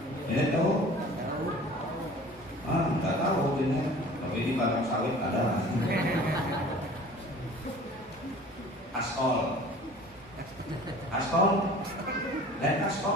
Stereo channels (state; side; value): noise; right; hum, 28 dB below the sound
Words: Jinet tahu? Nggak tahu jinet. Tapi di padang sawit ada. Askol, dan